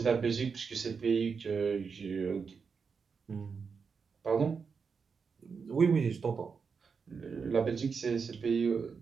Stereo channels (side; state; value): left; quieter; 5.6 dB